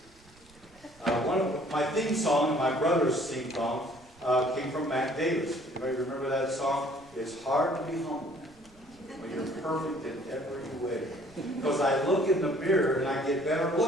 one of my theme song and my brother's theme song came from Mac Davis. Anybody remember that song? It's hard to be humble when you're perfect in every way. Because I look in the mirror and I get better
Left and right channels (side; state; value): right; noise; rumble, 27 dB below the sound